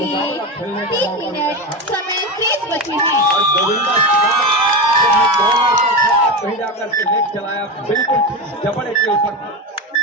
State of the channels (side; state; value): both; normal; correlation 0.19